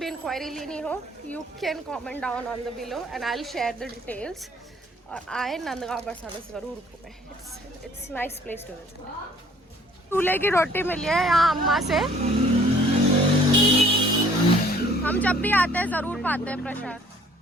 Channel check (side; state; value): both; normal; correlation 0.57